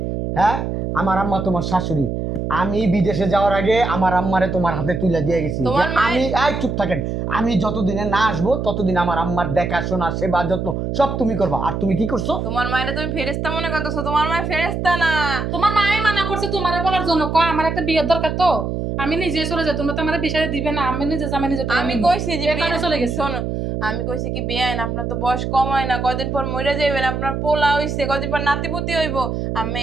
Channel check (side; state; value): right; noise; hum, 3 dB below the sound